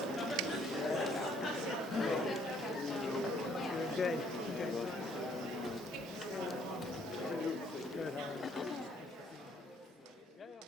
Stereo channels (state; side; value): normal; both; correlation 0.64